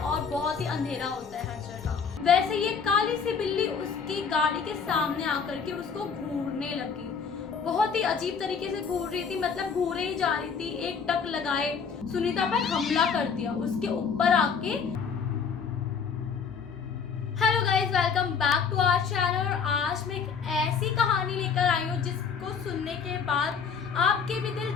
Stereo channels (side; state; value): right; quieter; 6.1 dB